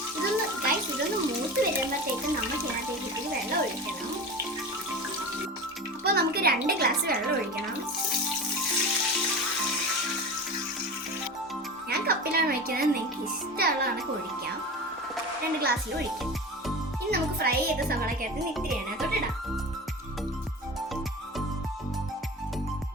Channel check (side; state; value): both; normal; correlation 0.31